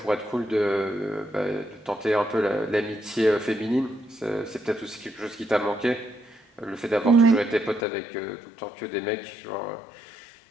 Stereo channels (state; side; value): drops out; right; at 7.9 s